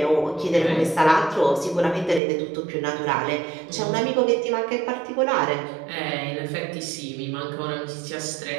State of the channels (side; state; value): left; drops out; at 2.2 s